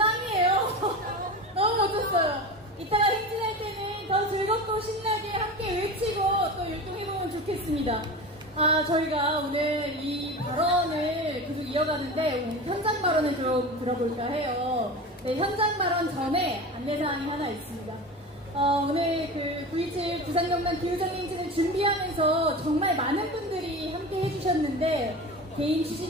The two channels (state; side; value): normal; both; correlation 0.30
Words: 너무 멋졌어요. 이따가 행진할 때는 더 즐겁고 신나게 함께 외치고 또 율동해보면 좋겠습니다. 아, 저희가 오늘 이 발언을 계속 이어가는데 오늘 현장 발언을 좀 들어볼까 해요. 네, 현장 발언 전에 안내사항이 하나 있습니다. 오늘 그 9.27 부산경남 기후정행진을 준비하면서 정말 많은 분들이 함께 해주셨는데 개인